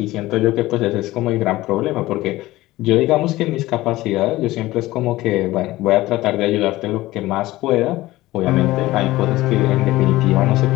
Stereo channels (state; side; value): quieter; right; 17.6 dB